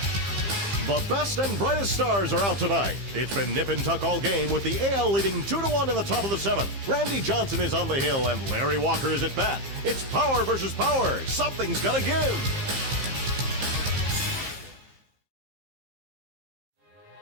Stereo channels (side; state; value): left; late; 15 ms